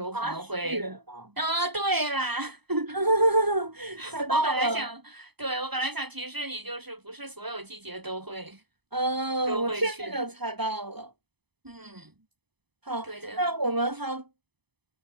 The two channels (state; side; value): late; left; 0.99 ms